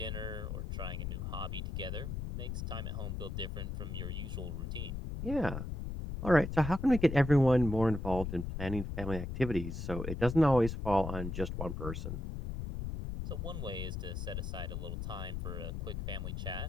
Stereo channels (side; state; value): left; noise; rumble, 4 dB below the sound